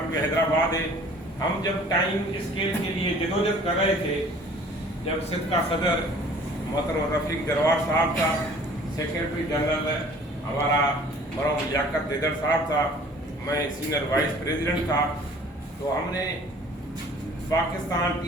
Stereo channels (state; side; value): normal; both; correlation 0.51